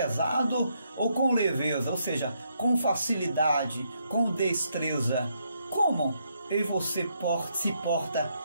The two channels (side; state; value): both; inverted; correlation -0.76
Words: ou com leveza, ou seja, com facilidade, com destreza? Como eu e você se porta